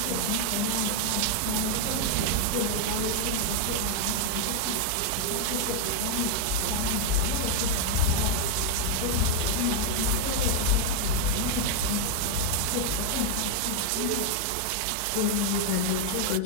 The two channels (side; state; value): both; different; correlation 0.00